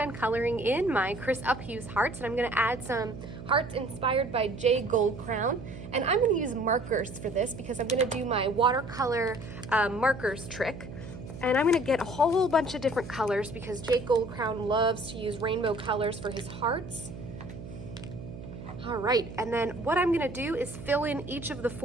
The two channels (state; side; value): noise; right; hum, 12 dB below the sound